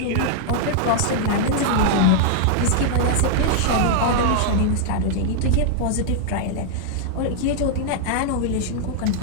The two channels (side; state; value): both; different; correlation -0.01